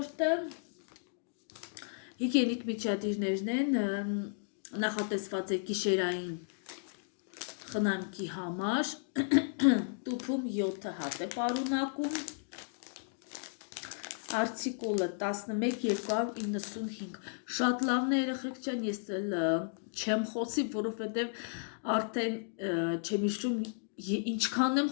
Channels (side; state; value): right; silent; digital silence